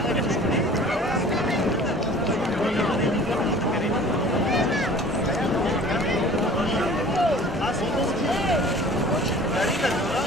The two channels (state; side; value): normal; both; correlation 0.46